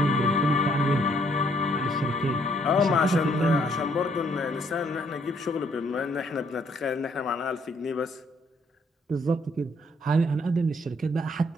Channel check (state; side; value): normal; both; correlation 0.67